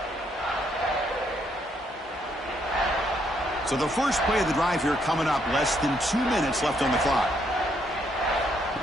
So the first play of the drive here coming up, less than 2 minutes left on the clock.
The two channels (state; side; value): normal; both; correlation 0.73